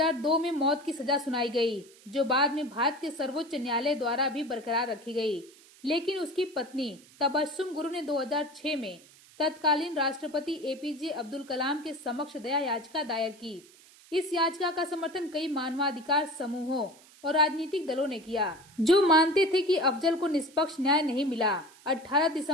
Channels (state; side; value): noise; right; hiss, 25 dB below the sound